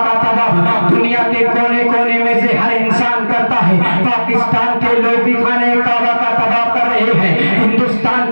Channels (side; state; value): both; inverted; correlation -1.00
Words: طواف دنیا کے کونے کونے میں سے ہر انسان کرتا ہے۔ پاکستان کے لوگ بھی خانہ کعبہ کا طواف کر رہے ہیں، ہندوستان